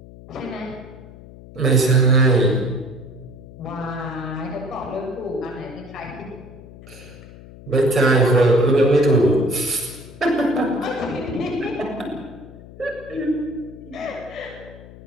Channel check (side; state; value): left; noise; hum, 18 dB below the sound